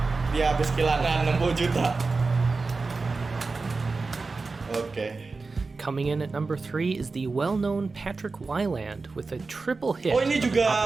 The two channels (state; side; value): quieter; left; 4.0 dB